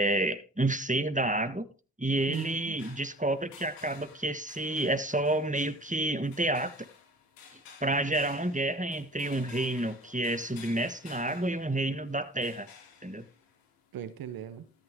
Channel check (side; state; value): both; normal; correlation 0.46